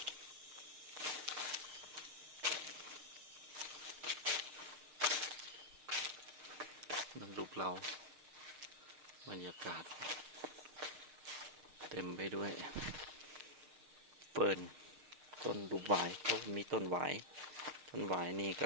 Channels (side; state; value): left; late; 6.5 ms